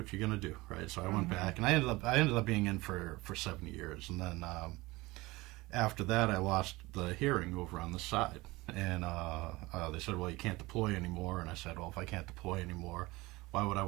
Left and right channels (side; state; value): left; quieter; 21.3 dB